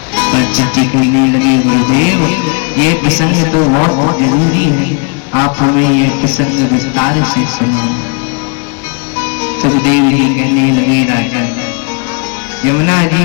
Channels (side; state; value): right; quieter; 35.8 dB